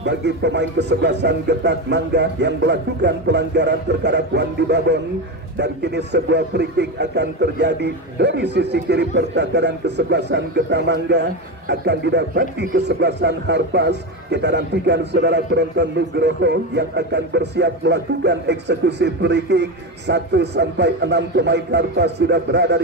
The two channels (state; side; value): normal; both; correlation 0.17